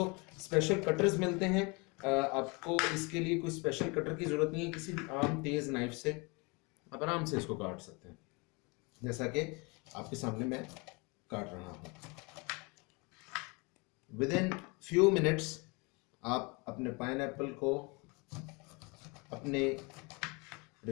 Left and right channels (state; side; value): quieter; right; 29.0 dB